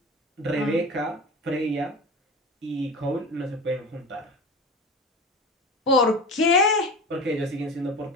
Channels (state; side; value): normal; both; correlation 0.30